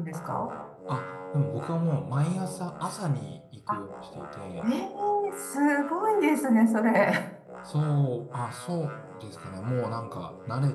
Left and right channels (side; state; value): both; identical; correlation 1.00